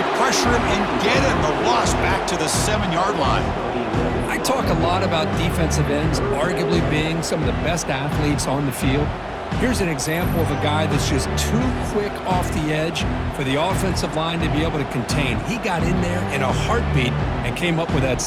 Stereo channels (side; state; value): both; identical; correlation 1.00